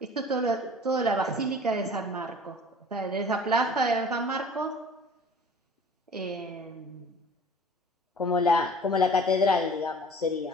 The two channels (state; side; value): normal; both; correlation 0.47